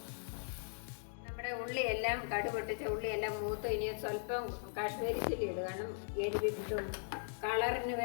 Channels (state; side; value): silent; right; digital silence